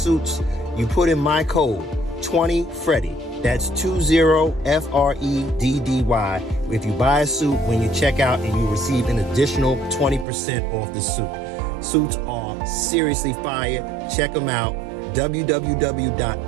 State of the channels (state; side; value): drops out; left; at 10.2 s